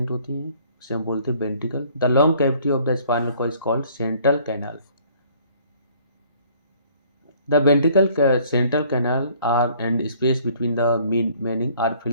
होती है, उसे हम बोलते हैं ventricle. The long cavity of the spinal cord is called central canal. The ventricle central canal are and space between the mening are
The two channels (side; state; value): both; inverted; correlation -0.58